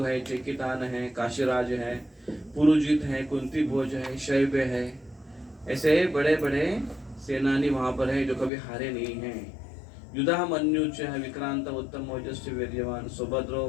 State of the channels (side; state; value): right; drops out; at 8.5 s